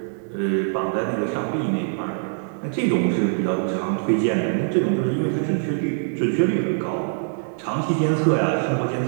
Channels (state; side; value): silent; left; digital silence